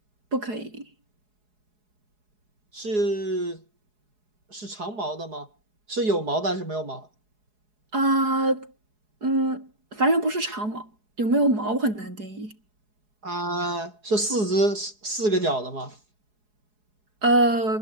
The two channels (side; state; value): left; late; 4.8 ms